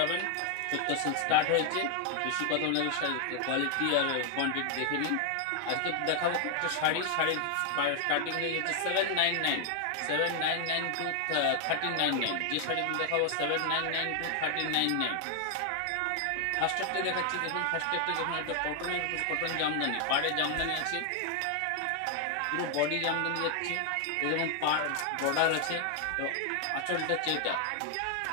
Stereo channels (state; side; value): different; both; correlation 0.00